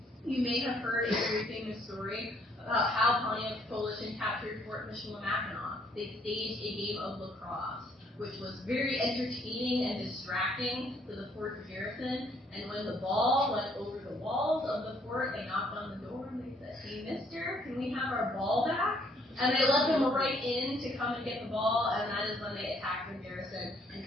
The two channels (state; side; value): normal; both; correlation 0.66